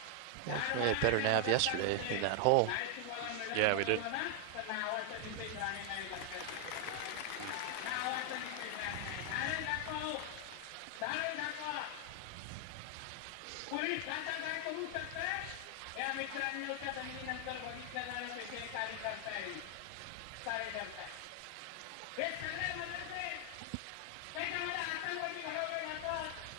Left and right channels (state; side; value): different; both; correlation 0.00